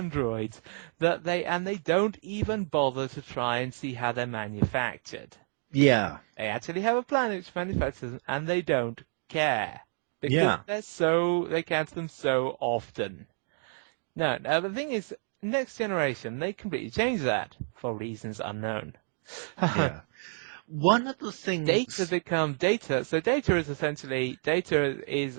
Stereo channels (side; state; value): left; silent; 58 dB below the other